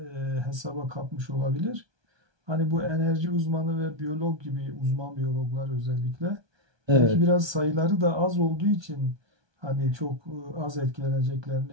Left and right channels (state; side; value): late; left; 1.2 ms